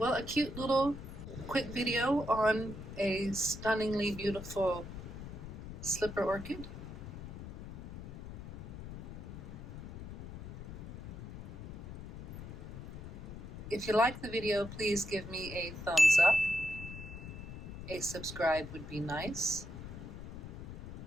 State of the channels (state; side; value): noise; left; rumble, 10 dB below the sound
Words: a cute little quick video on a stunningly beautiful slipper orchid. If you like the video, please give me a thumbs up. A subscribe would be nice.